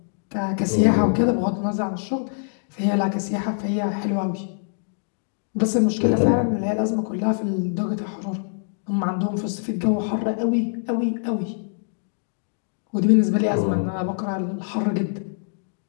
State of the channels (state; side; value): silent; right; digital silence